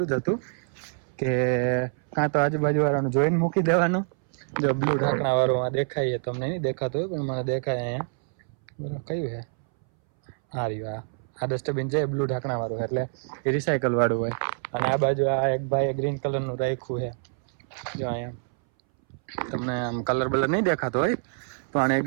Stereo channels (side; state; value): left; silent; 61 dB below the other